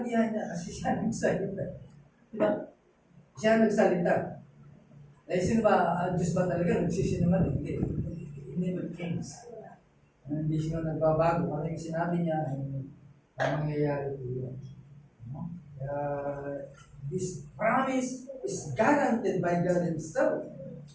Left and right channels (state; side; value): identical; both; correlation 1.00